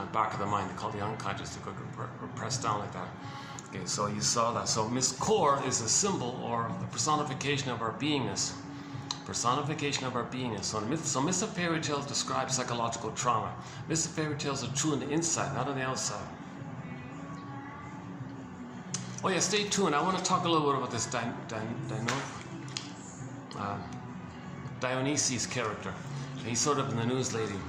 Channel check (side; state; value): both; identical; correlation 1.00